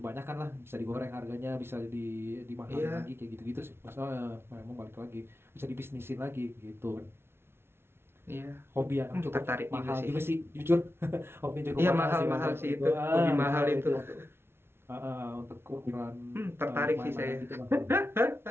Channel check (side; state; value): left; late; 0.12 ms